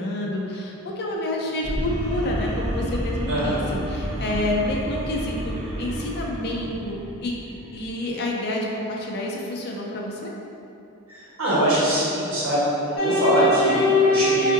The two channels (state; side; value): normal; both; correlation 0.27